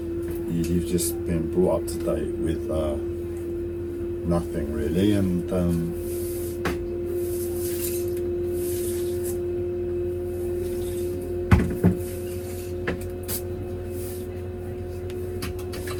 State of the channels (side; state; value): both; identical; correlation 1.00